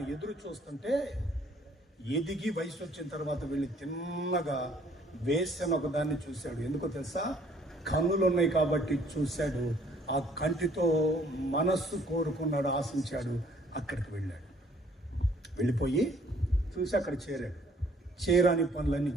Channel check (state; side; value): normal; both; correlation 0.60